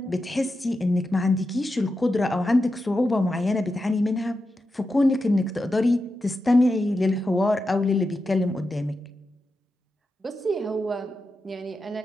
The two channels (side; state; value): both; normal; correlation 0.89